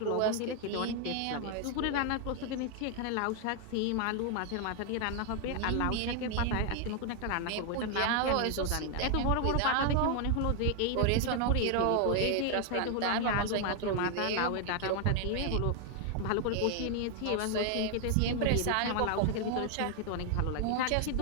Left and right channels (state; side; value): different; both; correlation 0.00